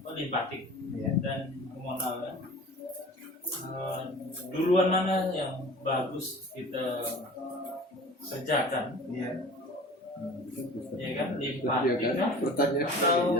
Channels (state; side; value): normal; both; correlation 0.41